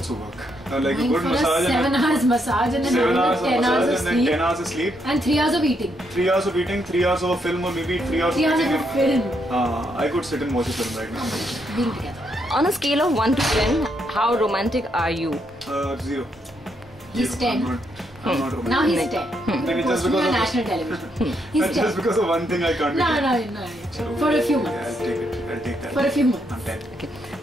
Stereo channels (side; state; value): both; normal; correlation 0.77